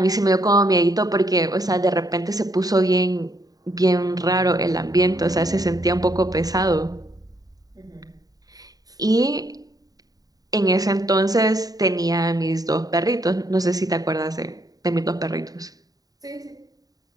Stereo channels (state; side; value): late; left; 0.18 ms